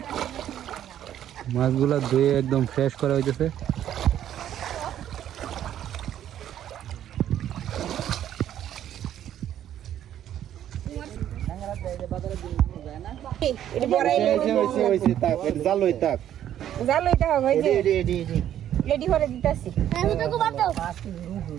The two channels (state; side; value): quieter; left; 11.0 dB